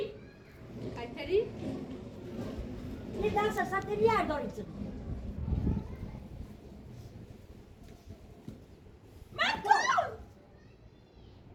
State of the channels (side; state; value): both; identical; correlation 1.00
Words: ایتری یه درس سطح بیار دارید من تو